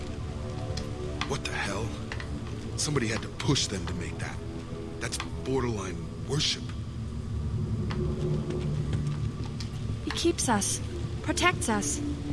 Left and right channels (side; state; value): both; identical; correlation 1.00